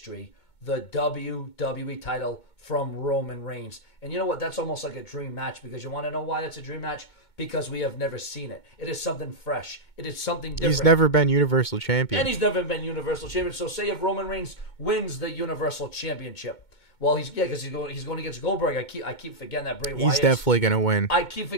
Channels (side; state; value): right; late; 2.2 ms